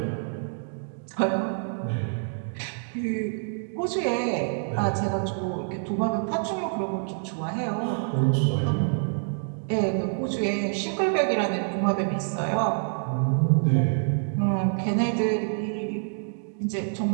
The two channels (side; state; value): left; silent; digital silence